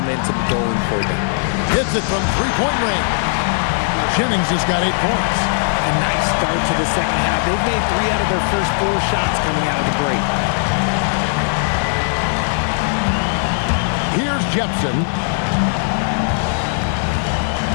going for them. Hits it from 3-point range. Jennings has got 8 points. A nice start to the second half. They've made 3 out of their first 4 shots coming out of the break. Here's Jepson.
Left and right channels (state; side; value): silent; right; digital silence